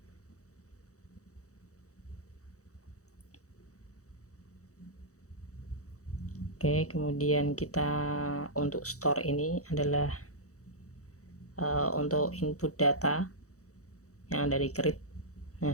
Oke, kemudian kita untuk store ini adalah untuk input data yang ada di create. Nah,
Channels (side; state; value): right; late; 0.65 ms